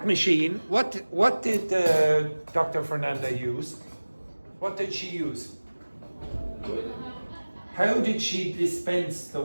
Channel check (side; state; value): both; inverted; correlation -1.00